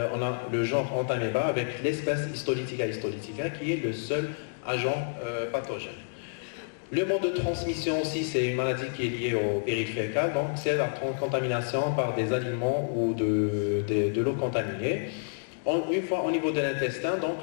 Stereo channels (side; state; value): right; silent; digital silence